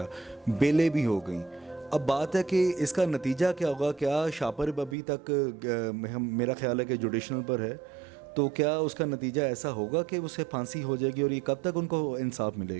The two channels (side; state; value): left; drops out; at 5.0 s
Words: بیلیں بھی ہو گئیں۔ اب بات ہے کہ اس کا نتیجہ کیا ہوگا؟ کیا شاپر ابھی تک میرا خیال ہے کہ جوڈیشنل پر ہے، تو کیا اس کا نتیجہ ایسا ہوگا کہ اسے پھانسی ہو جائے گی، اور یہ کب تک ان کو انصاف